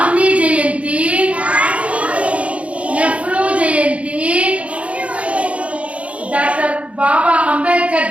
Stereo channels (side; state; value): left; late; 0.063 ms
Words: జయంతి, నెహ్రూ జయంతి, డాక్టర్ బాబా